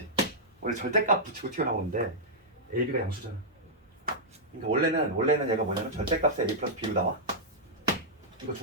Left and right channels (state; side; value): normal; both; correlation -0.09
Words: 원래 절대값 붙이고 튀어나오는데 a, b가 양수잖아. 그러니까 원래는 얘가 뭐냐면 절대값에 a 플러스 b로 나와. 이거